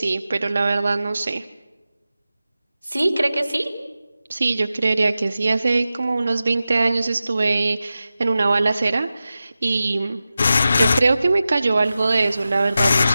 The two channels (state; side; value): inverted; both; correlation -0.94